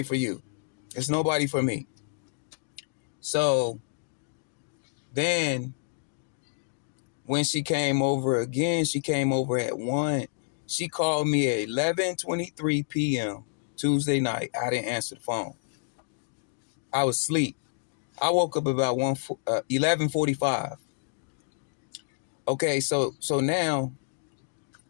for you. It's nobody for me. So then when she came over again, she came over at 1. She called me at 11:23 p.m. Tuesday night. I didn't answer the phone. I was asleep. I woke up about 11:45. Okay, so now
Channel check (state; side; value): silent; right; digital silence